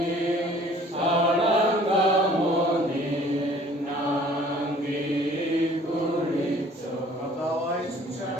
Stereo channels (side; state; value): both; normal; correlation 0.53